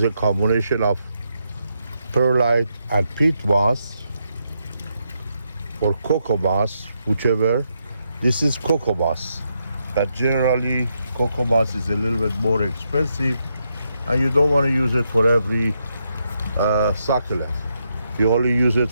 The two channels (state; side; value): inverted; both; correlation -0.81